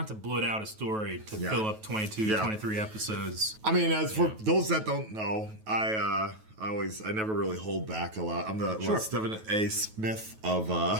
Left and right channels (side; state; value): left; late; 9.3 ms